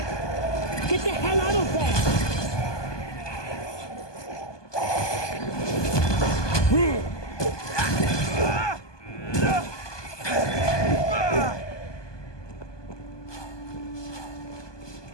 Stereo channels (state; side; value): late; right; 1.2 ms